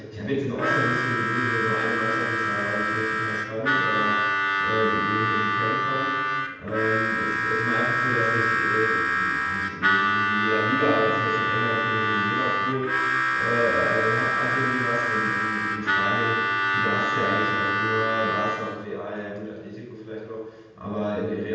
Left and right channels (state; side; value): identical; both; correlation 1.00